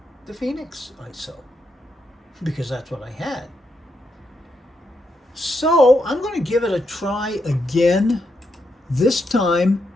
the Fienix ISO because that's what I had. So I'm going to give it a try again, this time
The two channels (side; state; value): both; normal; correlation 0.81